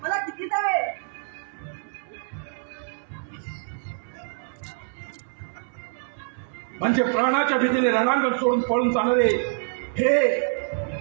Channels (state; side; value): silent; left; 61 dB below the other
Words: मला किती जावे. म्हणजे प्राणाच्या भीतीने रणांगण सोडून पळून जाणारे